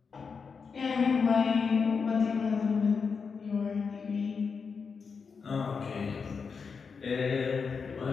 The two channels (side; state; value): right; quieter; 5.5 dB